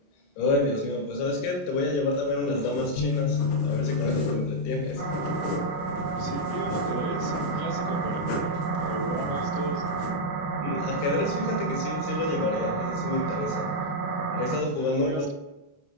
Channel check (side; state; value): right; late; 28 ms